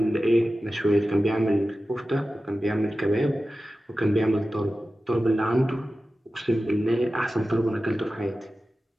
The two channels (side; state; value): both; normal; correlation 0.94